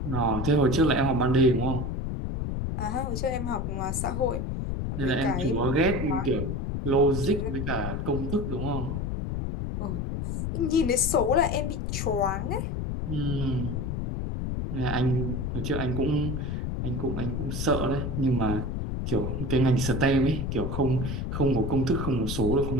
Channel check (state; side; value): noise; left; rumble, 2 dB below the sound